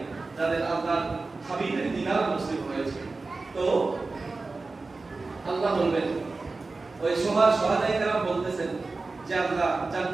যাদের আল্লাহর হাবিবের দিদার নসিব হয়েছে। তো আল্লাহ বলবেন, ওই শোহাদায়ে কেরাম বলতেছেন যে আল্লাহ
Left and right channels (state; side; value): quieter; left; 3.7 dB